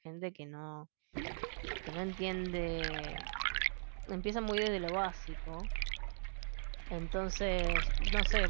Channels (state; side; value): silent; left; digital silence